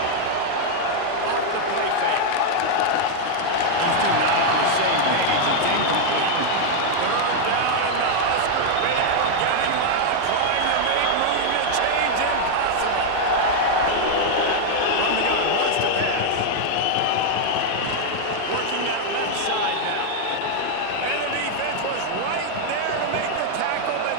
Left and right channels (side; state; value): both; different; correlation 0.00